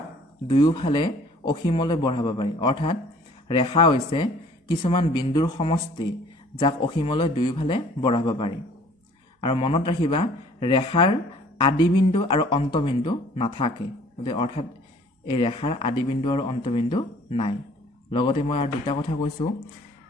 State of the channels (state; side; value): normal; both; correlation 0.53